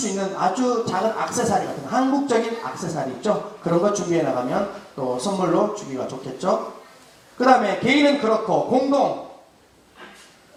있는 아주 작은 액세서리 같은 한국적인 액세서리 있죠? 그런 거 준비해 나가면 또 선물로 주기가 좋겠죠? 그 다음에 개인은 그렇고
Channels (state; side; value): identical; both; correlation 1.00